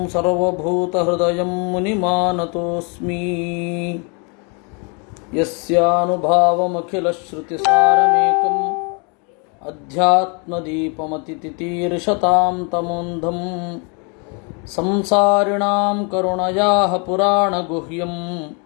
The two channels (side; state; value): right; quieter; 34.8 dB